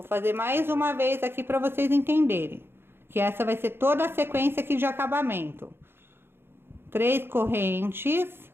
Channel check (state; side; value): late; left; 0.11 ms